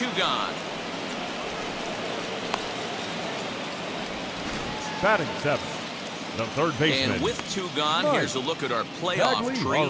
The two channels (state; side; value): identical; both; correlation 1.00